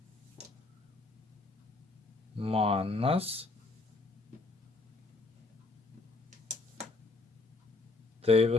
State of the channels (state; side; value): quieter; right; 3.4 dB